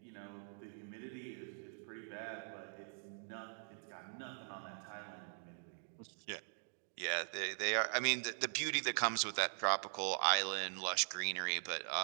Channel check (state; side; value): silent; left; digital silence